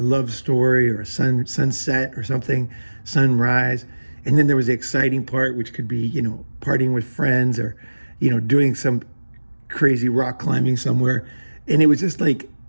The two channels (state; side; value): inverted; both; correlation -1.00